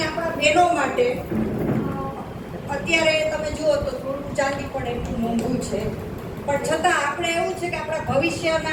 આપણા બહેનો માટે અત્યારે તમે જુઓ તો થોડું ચાંદી પણ એટલું મોંઘું છે, પણ છતાં આપણે એવું છે કે આપણા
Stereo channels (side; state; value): both; identical; correlation 1.00